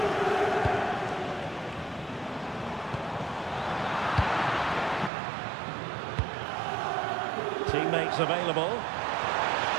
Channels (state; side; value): drops out; left; at 5.1 s